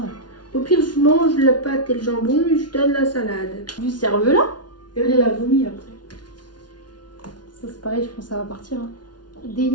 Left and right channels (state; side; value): late; right; 0.70 ms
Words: Au pire, je mange la pâte et le jambon et je donne la salade. Du cerveau-là. Et elle l'a vomi après. Ça, c'est pareil, je pense que ça va partir. Hein.